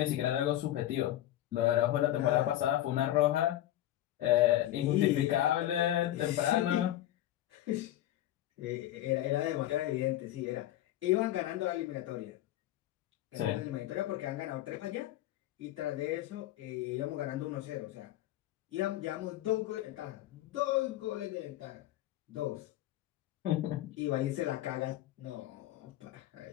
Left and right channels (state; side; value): quieter; right; 13.8 dB